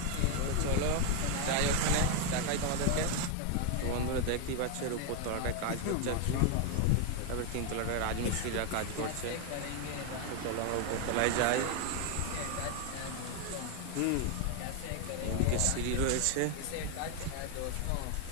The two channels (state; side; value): different; both; correlation 0.01